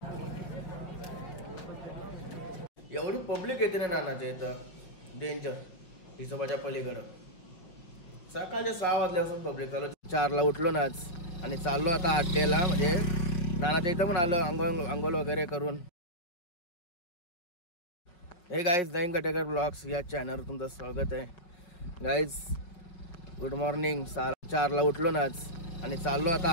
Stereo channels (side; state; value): right; late; 5.7 ms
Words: एवढी पब्लिक येते ना नानाच्या इथं, डेंजर. हिशोबाच्या पलीकडं सकाळच्या 6 वाजल्यापासून पब्लिक चालू. 4ला उठलो ना आज आणि चाललो आता 8ला, म्हणजे नानाच्या इथं पण आलो अंघोळ वगैरे करून. हे गाईज, नवीन कटेकर ब्लॉग्स या चॅनलवर तुमचं स्वागत आहे. Guys good morning. 4ला उठलो ना आज आणि चाललो